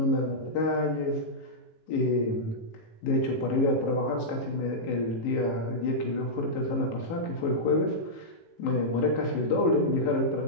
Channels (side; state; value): right; late; 18 ms